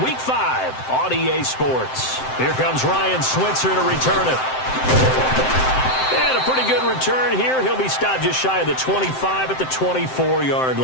Week 5 on EA Sports. Here comes Ryan Switzer to return it. And a pretty good return here. He'll be stopped just shy of the 25 at the 24-yard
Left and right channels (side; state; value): right; late; 7.7 ms